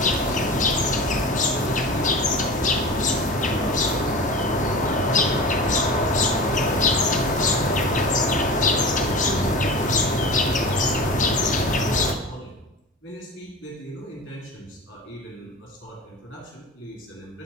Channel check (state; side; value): normal; both; correlation 0.32